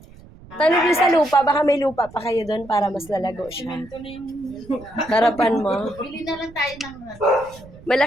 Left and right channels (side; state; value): right; noise; rumble, 21 dB below the sound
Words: Tanong niyo sa lupa, baka may lupa pa kayo doon para mas lalago siya. Harapan mo. Bili na lang tayo ng...